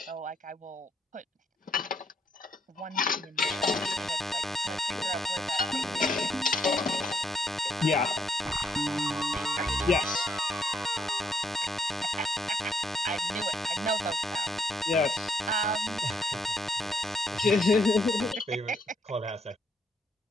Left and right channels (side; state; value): both; normal; correlation 0.74